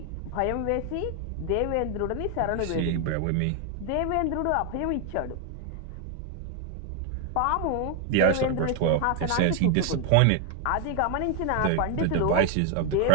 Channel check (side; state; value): both; different; correlation 0.01